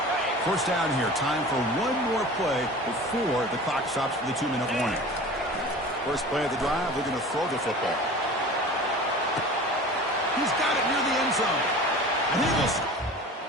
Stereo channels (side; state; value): both; normal; correlation 0.38